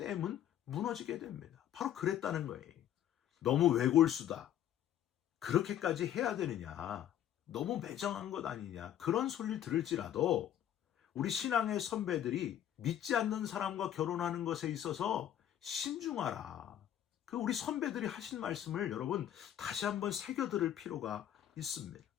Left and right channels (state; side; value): quieter; right; 11.0 dB